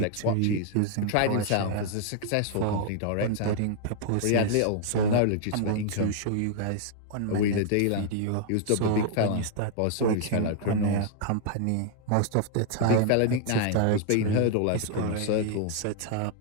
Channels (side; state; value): both; different; correlation 0.00